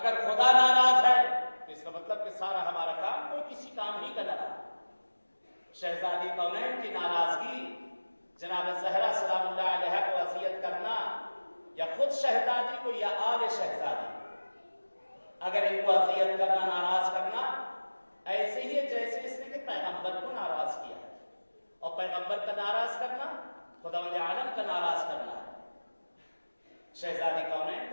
خدا ناراض ہے تو اس کا مطلب کہ سارا ہمارا کام کوئی کسی کام ہی کا نہ رہا. شہزادی کونین کی ناراضگی، جناب زہرا سلام اللہ علیہ کو اذیت کرنا یا خود شہزادی کو یا آل شہزادی اگر ان کو اذیت کرنا، ناراض کرنا، ایسے ہی ہے جیسے اس نے کہ پیغمبر کو ناراض کیا ہے. اور پیغمبر کا ناراض کرنا خداوند عالم کا ناراض کرنا ہے. شہزادی کونین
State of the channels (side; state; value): both; inverted; correlation -1.00